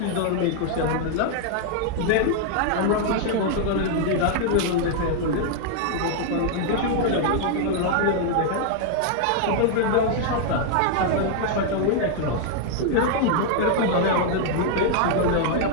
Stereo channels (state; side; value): different; both; correlation 0.00